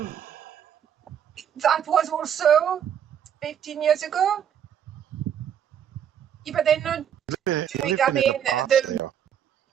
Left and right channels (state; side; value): quieter; left; 9.1 dB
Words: was also 15 years ago. Yeah, but they're not doing. I mean,